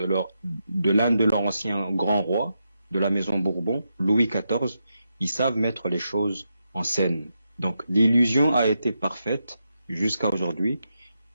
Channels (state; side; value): inverted; both; correlation -0.85